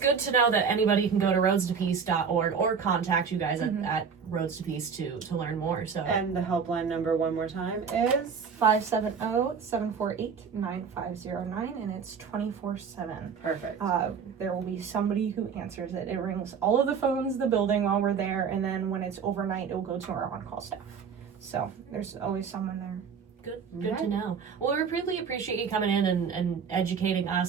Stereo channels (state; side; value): quieter; left; 6.3 dB